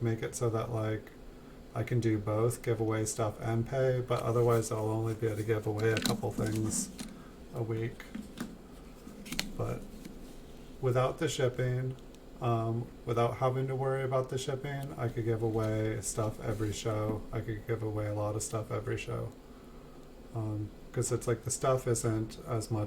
it so that like I can do both, give away stuff and pay, but otherwise I'll only be able to give away a couple things a week. But without the shipping, without having to worry about the shipping, I could give away stuff every show. I could give away a lot of stuff every show. Because it's like the stuff isn't as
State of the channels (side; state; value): both; identical; correlation 1.00